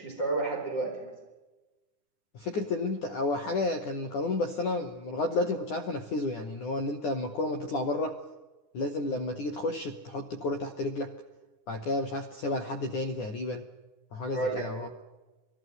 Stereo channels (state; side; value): late; right; 9.9 ms